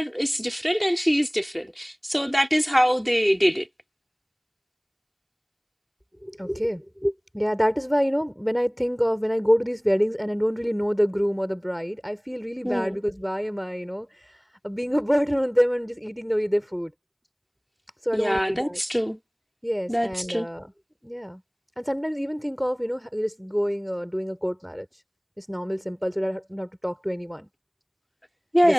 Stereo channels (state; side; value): identical; both; correlation 1.00